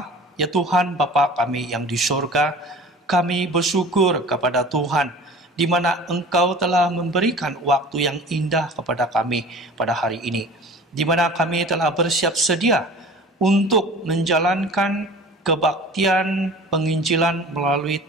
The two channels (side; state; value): both; normal; correlation 0.42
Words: ya Tuhan Bapa kami yang di surga, kami bersyukur kepada Tuhan di mana Engkau telah memberikan waktu yang indah kepada kami pada hari ini, di mana kami telah bersiap sedia untuk menjalankan kebaktian penginjilan melalui